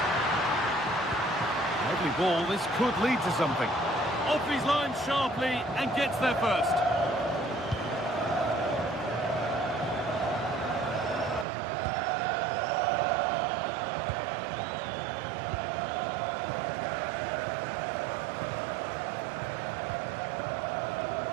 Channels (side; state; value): left; drops out; at 11.5 s